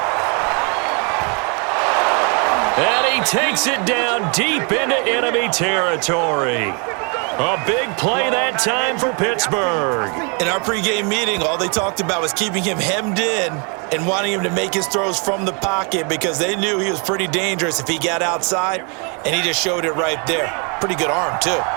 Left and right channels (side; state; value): left; quieter; 35.3 dB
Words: And he takes it down deep into enemy territory. A big play that time for Pittsburgh. In our pregame meeting, all they talked about was keeping him hemmed in and wanting him to make his throws from the pocket because they knew he was pretty dangerous if he got outside, and he just showed it right there. Pretty good arm, too.